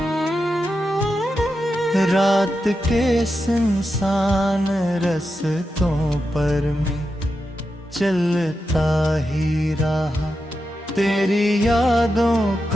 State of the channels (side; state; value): both; normal; correlation 0.88